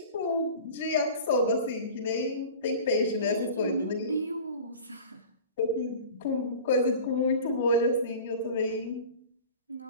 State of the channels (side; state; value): both; inverted; correlation -0.39